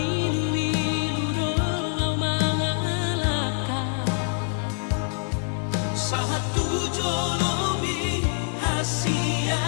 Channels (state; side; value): silent; right; 62 dB below the other